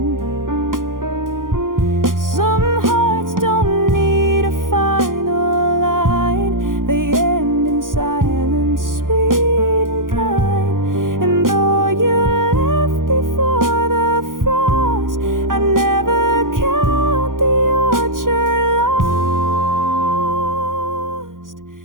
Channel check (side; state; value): left; late; 0.90 ms